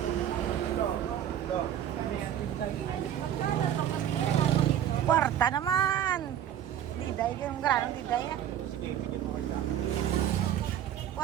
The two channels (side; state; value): left; quieter; 10.5 dB